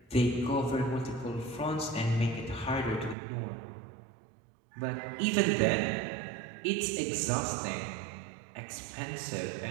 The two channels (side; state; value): left; drops out; at 3.2 s